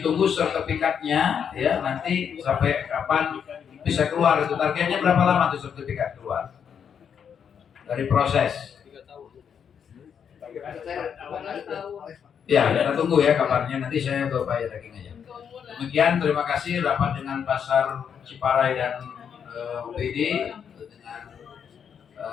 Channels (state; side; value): quieter; right; 7.6 dB